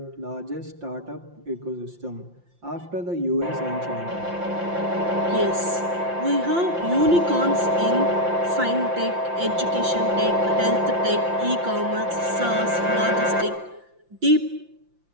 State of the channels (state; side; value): late; left; 5.8 ms